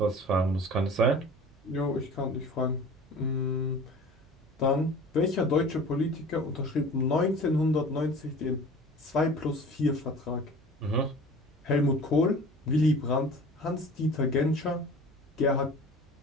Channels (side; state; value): right; noise; hum, 29 dB below the sound